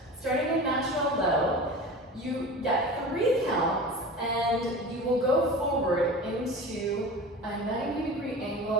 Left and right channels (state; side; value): normal; both; correlation 0.34